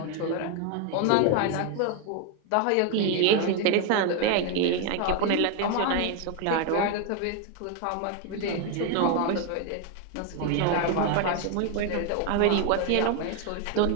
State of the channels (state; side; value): different; both; correlation 0.01